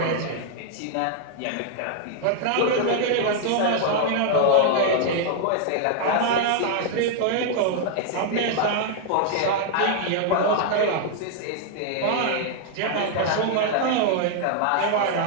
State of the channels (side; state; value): both; different; correlation 0.00